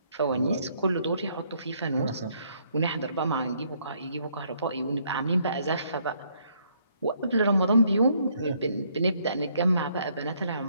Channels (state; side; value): inverted; both; correlation -0.68